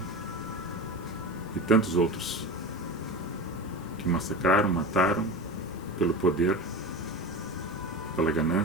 e tantos outros, que massacraram, mataram pelo poder, pela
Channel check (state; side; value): normal; both; correlation 0.28